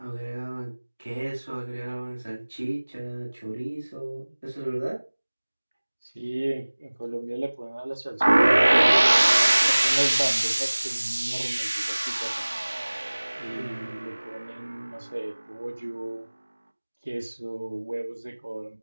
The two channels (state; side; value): inverted; both; correlation -1.00